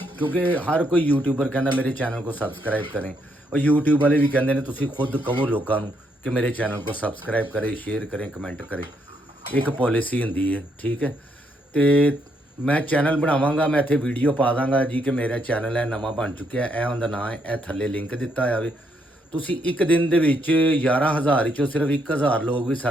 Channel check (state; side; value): normal; both; correlation 0.75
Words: ਕਿਉਂਕਿ ਹਰ ਕੋਈ ਯੂਟਿਊਬਰ ਕਹਿੰਦਾ ਮੇਰੇ ਚੈਨਲ को सब्सक्राइब करें, और यूट्यूब वाले भी कहते हैं ਤੁਸੀਂ खुद कहो लोगों ਨੂੰ कि मेरे चैनल को सब्सक्राइब करें, शेयर करें, कमेंट करें। एक पॉलिसी ਹੁੰਦੀ ਹੈ, ठीक है। ਤੇ ਮੈਂ ਚੈਨਲ ਬਣਾਵਾਂਗਾ, ਮੈਂ ਇੱਥੇ ਵੀਡੀਓ ਪਾ ਦਾਂਗਾ ਜੀ ਕਿ ਮੇਰਾ ਚੈਨਲ ਹੈ ਨਵਾਂ ਬਣ ਚੁੱਕਿਆ, ਇਹ ਉਹਦਾ ਨਾਂ ਹੈ, ਇਹ ਥੱਲੇ ਲਿੰਕ ਦਿੱਤਾ ਹੋਇਆ ਵੇ। ਤੁਸੀਂ ਇੱਕ ਦਿਨ ਦੇ ਵਿੱਚ 11,000 ਵਿੱਚੋਂ ਸਿਰਫ 1,000 ਲੋਕ ਵੀ